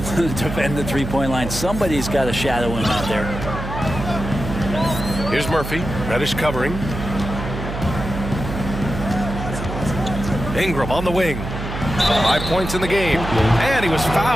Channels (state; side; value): noise; right; hum, 7 dB below the sound